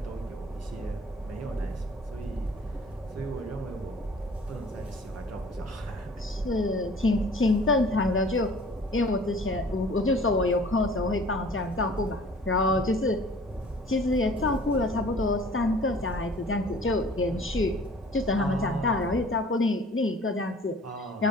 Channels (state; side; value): normal; both; correlation 0.49